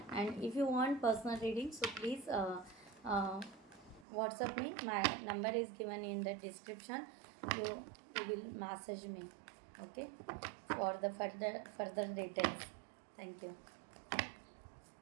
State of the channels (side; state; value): left; drops out; at 4.0 s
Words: And if you want personal reading so please WhatsApp me. My number is given in the description. You will message me, okay, for the further details. Thank you.